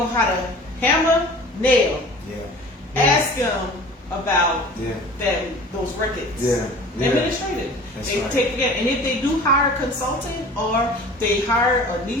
how to hammer, nail, ask them about those records. Administrative. They take it, and if they do hire a consultant or they hire a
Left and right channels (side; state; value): both; normal; correlation 0.43